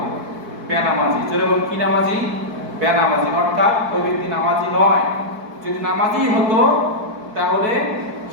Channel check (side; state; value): left; late; 4.6 ms